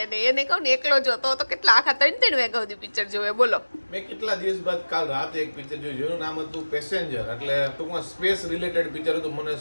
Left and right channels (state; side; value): inverted; both; correlation -1.00